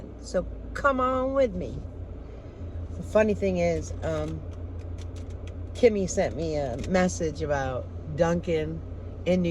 so come on with me. The funny thing is, Kimmy sent me a message about Dunkin' in New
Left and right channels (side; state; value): both; identical; correlation 1.00